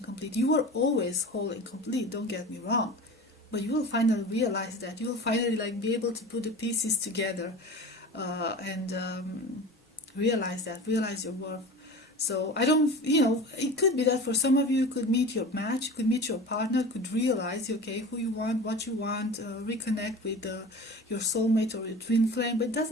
complete. You are always whole and complete, don't get me wrong, but you will finally realize that. You will finally like be able to put the pieces together, and realize your worth. So I don't, it could be that for some of you, could meet your match, could meet your partner, could realize, okay, who you want, what you want, reconnect with your soulmate or your twin flame. But it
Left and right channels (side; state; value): both; normal; correlation 0.35